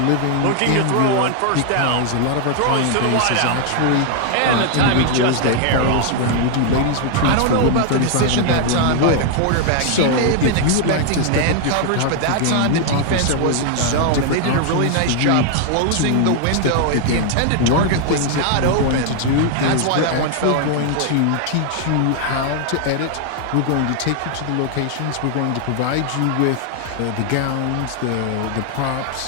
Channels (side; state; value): both; different; correlation 0.00